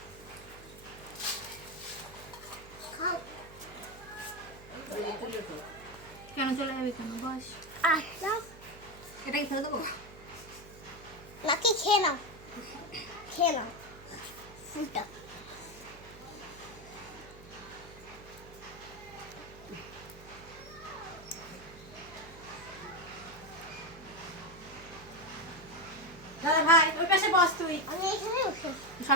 আচ্ছা এটা কি ফেলে দেবো? নাকি খেয়ে নাও ফুলটা দাদা ভাই ওই পাশে বস তুই। আমি এখানে বসে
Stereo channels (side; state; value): right; noise; hum, 18 dB below the sound